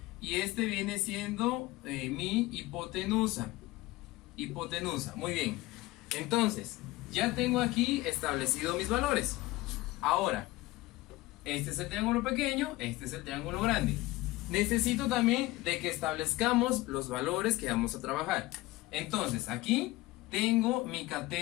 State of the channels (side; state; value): right; quieter; 19.0 dB